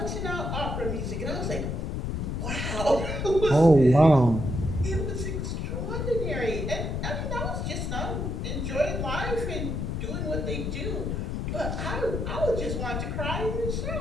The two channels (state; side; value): noise; left; rumble, 2 dB below the sound